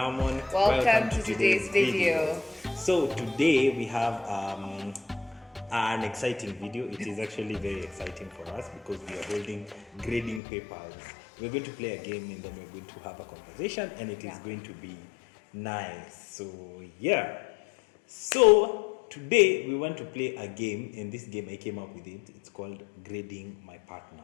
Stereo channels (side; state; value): right; drops out; at 10.4 s